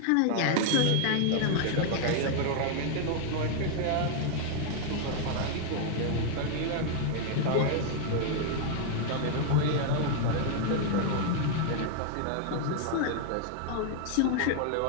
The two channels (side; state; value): both; different; correlation 0.00